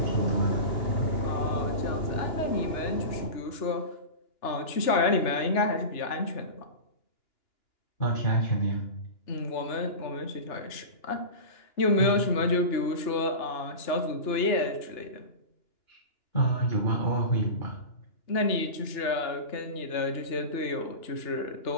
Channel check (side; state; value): right; late; 2.9 ms